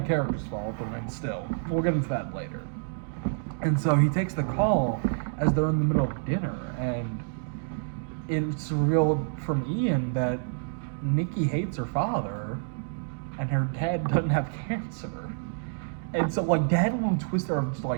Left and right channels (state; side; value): silent; left; digital silence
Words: character's fault, but still, we'll get into that later. And so he takes the call as they're in the middle of dinner, and it's revealed from Ian that Nikki hates her father, and her dad doesn't have cancer. And so, like, Dad will twist her, just